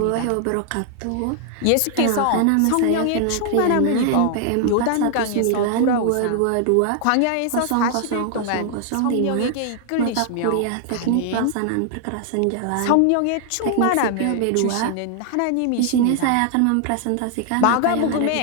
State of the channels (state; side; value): different; both; correlation 0.00